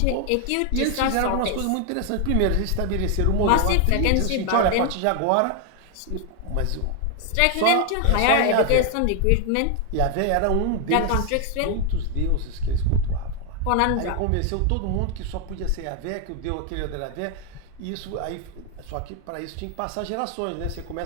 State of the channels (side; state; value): both; different; correlation 0.01